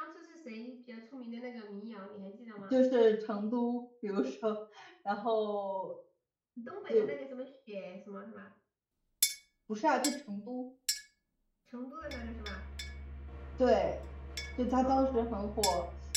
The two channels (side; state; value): both; identical; correlation 1.00